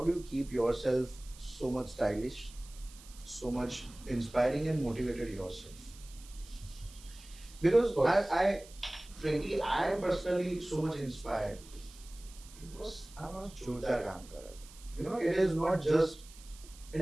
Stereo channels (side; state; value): right; noise; hiss, 20 dB below the sound